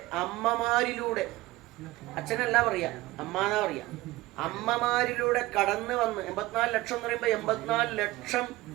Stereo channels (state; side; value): quieter; left; 18.7 dB